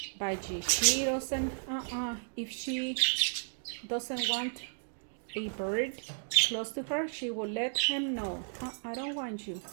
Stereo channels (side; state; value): left; silent; digital silence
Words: budgie. She doesn't, if she doesn't want a bird close to her, she will let him know. I don't want you.